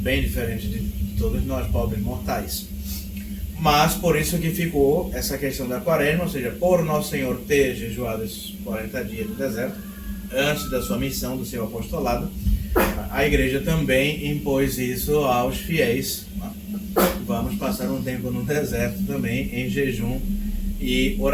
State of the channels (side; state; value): both; identical; correlation 1.00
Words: diferente de todos nós, pobres mortais. Mas por isso que ficou essa questão da quaresma, ou seja, por Nosso Senhor ter jejuado esses 40 dias no deserto, antes da sua missão, do seu apostolado, a igreja também impôs isso aos fiéis. Vamos passar um tempo no deserto também, em jejum e